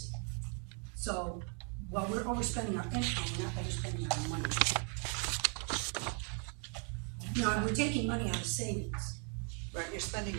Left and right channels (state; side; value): quieter; left; 39.2 dB